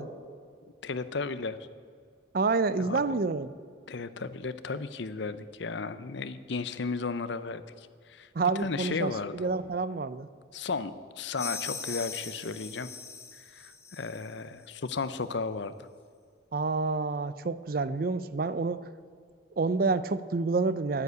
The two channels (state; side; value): normal; both; correlation 0.04